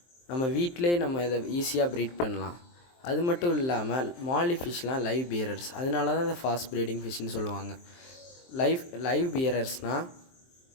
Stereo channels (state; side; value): late; right; 23 ms